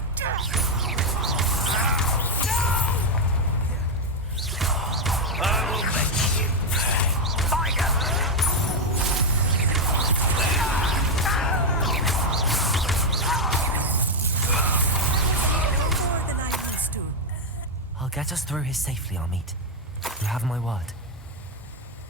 I will make you pay. Find More than I used to. I'll get us through here safely, Amit. You have my word.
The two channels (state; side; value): normal; both; correlation 0.03